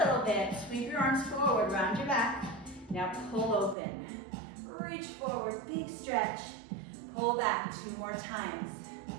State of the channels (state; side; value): drops out; left; at 3.8 s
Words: bit. Sweep your arms forward, round your back. Now pull open. Reach forward, big stretch. Pull back 2 more times.